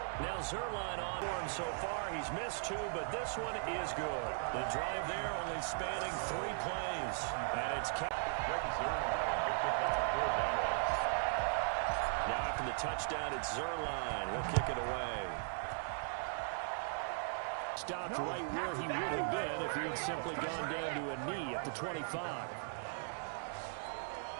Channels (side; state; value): left; silent; digital silence